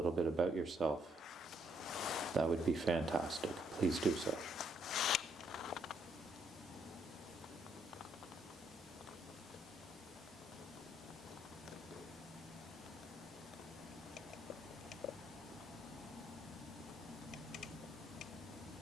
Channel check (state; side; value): normal; both; correlation 0.72